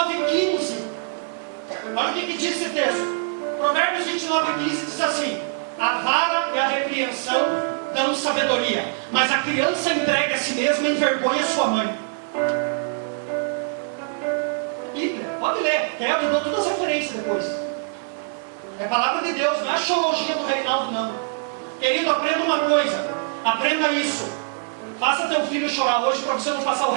15. Olha o que diz esse texto. Provérbios 29, 15 diz assim: a vara e a repreensão dão sabedoria, mas a criança entregue a si mesma envergonha sua mãe. Bíblia, pode ler, eu dou todas as referências depois. É palavra de Deus, não é axiologia do Reinaldo, não. Querido, aprenda uma coisa, aprenda isso. Faça teu filho chorar hoje para você não passar o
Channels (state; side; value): silent; left; 63 dB below the other